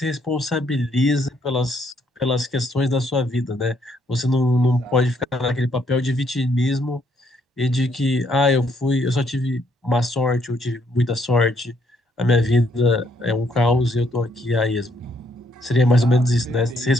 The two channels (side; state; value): both; normal; correlation 0.70